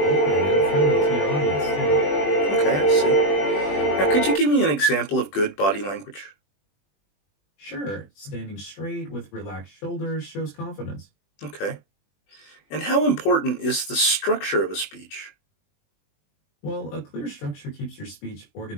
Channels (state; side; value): late; right; 20 ms